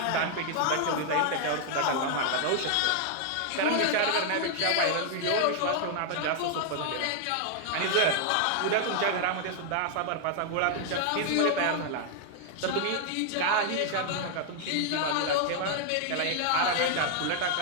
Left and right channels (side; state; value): both; different; correlation 0.00